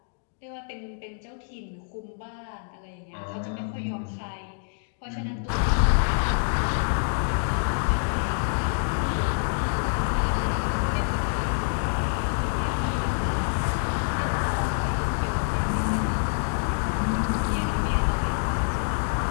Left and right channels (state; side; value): silent; right; digital silence